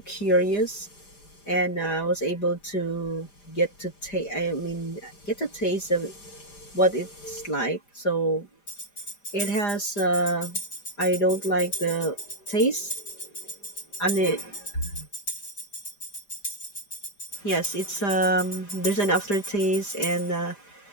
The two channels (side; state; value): right; late; 5.0 ms